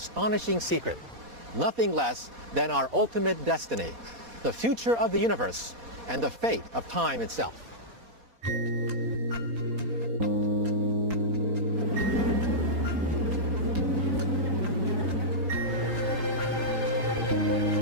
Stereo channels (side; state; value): left; late; 4.2 ms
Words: secret. Nothing less than our ultimate destiny, the future of the universe, and the fate of time itself.